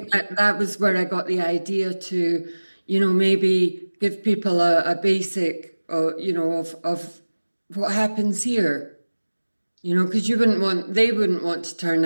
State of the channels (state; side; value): inverted; both; correlation -1.00